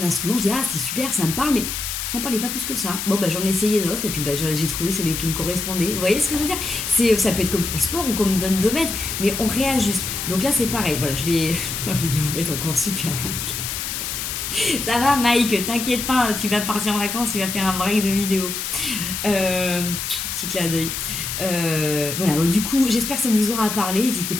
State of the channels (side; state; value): left; noise; hiss, 4 dB below the sound